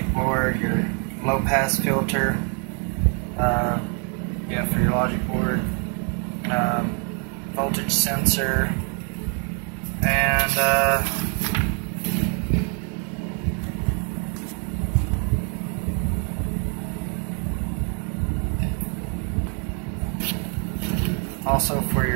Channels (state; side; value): quieter; left; 39.1 dB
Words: board, your low pass filter. Yeah, for your logic board. Voltage sensor, and also for